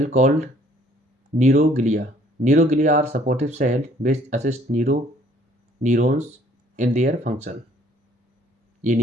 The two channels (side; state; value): both; normal; correlation 0.60